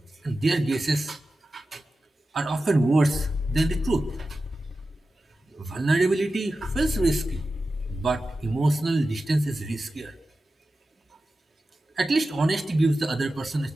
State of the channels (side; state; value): both; normal; correlation 0.93